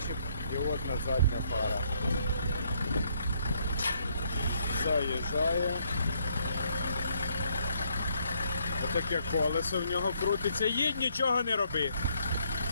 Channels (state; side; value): inverted; both; correlation -0.70